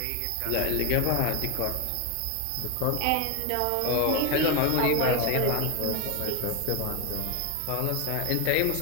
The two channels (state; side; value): different; both; correlation 0.02